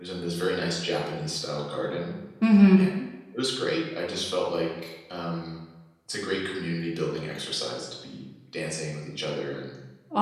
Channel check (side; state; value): both; identical; correlation 1.00